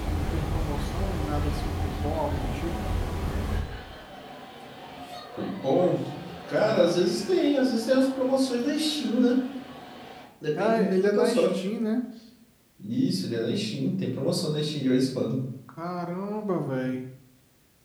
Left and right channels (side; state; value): both; identical; correlation 1.00